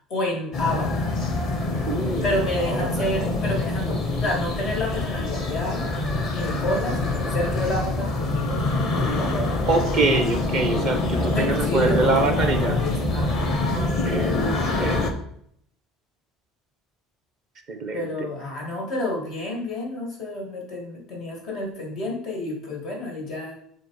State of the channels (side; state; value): both; normal; correlation 0.48